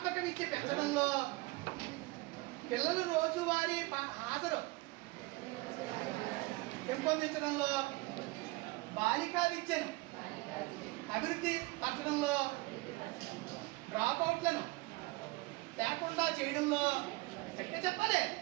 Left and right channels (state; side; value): quieter; left; 23.5 dB